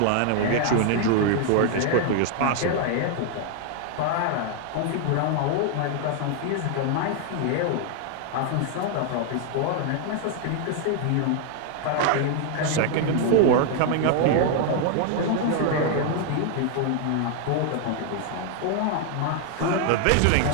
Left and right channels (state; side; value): different; both; correlation 0.00